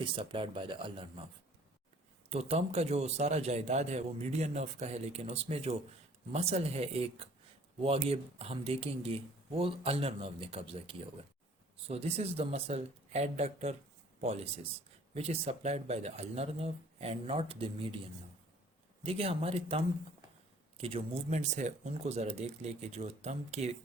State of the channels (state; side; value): normal; both; correlation 0.54